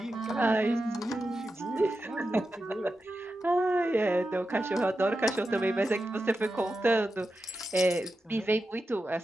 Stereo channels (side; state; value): both; normal; correlation 0.90